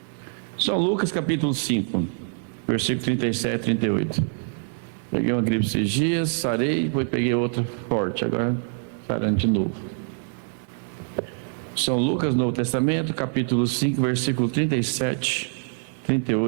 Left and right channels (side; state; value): left; silent; 62 dB below the other